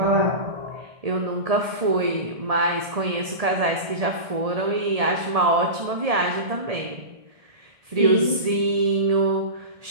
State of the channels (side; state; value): left; late; 1.8 ms